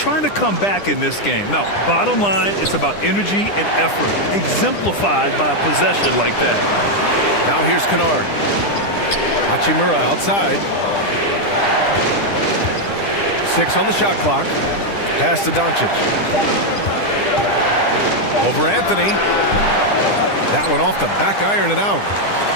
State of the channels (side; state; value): right; late; 10 ms